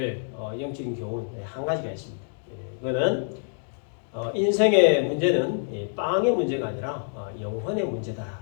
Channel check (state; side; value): silent; right; digital silence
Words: 영적인 교훈 한 가지가 있습니다. 그거는 인생의 문제는 빵의 문제가 아니라 영혼의 문제다라는